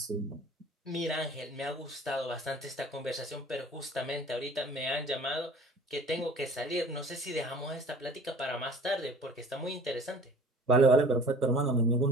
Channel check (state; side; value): normal; both; correlation 0.47